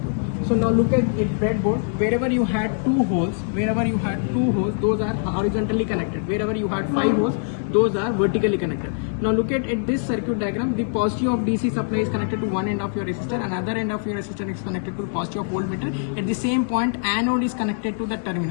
So now look at it breadboard. Wherever you had two holes, those are horizontally connected. Wherever you had 5 holes, those are vertically connected. Now look at this circuit diagram. The positive of DC supply is connected to one end of your resistor, another end of your resistor is connected to the positive of voltmeter. At the same point, anode is connected to the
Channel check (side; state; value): right; silent; digital silence